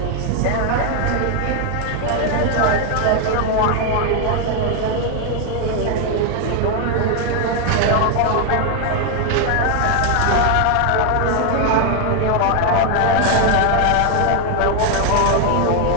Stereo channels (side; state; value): both; different; correlation 0.01